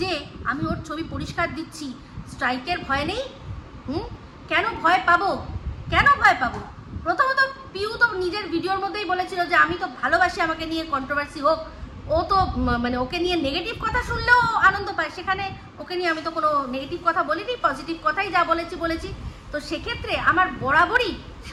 আমি ওর ছবি পরিষ্কার দিচ্ছি? স্ট্রাইকের ভয় নেই? কেন ভয় পাবো? কেন ভয় পাবো? প্রথমত পিউ তো নিজের ভিডিওর মধ্যেই বলেছিল যে আমি তো ভালোবাসি আমাকে নিয়ে কন্ট্রোভার্সি হোক। ও তো মানে ওকে নিয়ে নেগেটিভ কথা শুনলেও আনন্দ পায়, সেখানে ওকে নিয়ে আমি তো কোনো নেগেটিভ কথা বলিনি, পজিটিভ কথাই যা বলেছি। তো সেক্ষেত্রে আমার বরাবরই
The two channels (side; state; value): both; identical; correlation 1.00